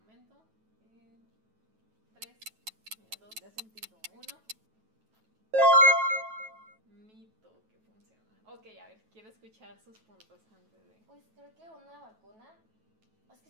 3, 2, 1. Mito que funciona. Ok, a ver, quiero escuchar sus puntos antes de... Pues creo que una vacuna, es que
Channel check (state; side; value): late; left; 9.2 ms